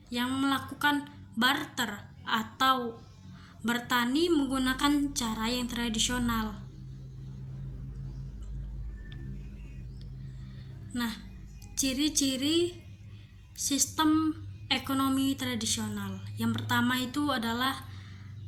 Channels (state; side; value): identical; both; correlation 1.00